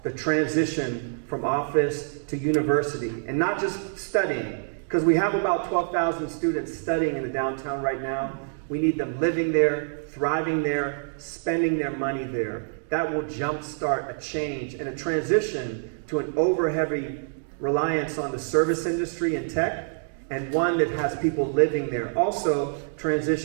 the transition from office to university, and not just studying, because we have about 12,000 students studying in the downtown right now. We need them living there, thriving there, spending their money there. That will jumpstart a change and a transition to an over-heavy reliance on the service industry and tech, and one that has people living there. Also,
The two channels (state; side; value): silent; left; digital silence